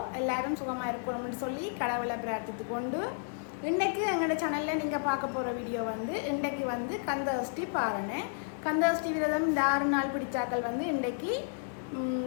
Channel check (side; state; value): right; silent; digital silence